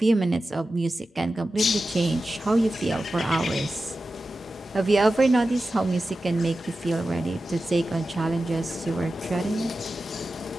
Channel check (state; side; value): normal; both; correlation 0.93